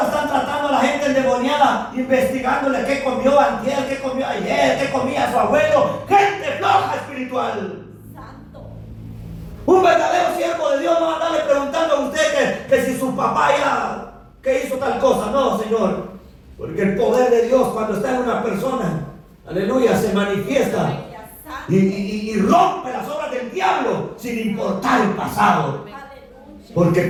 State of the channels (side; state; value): both; identical; correlation 1.00